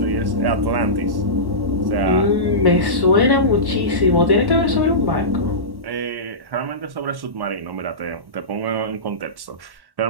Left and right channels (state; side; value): late; left; 1.1 ms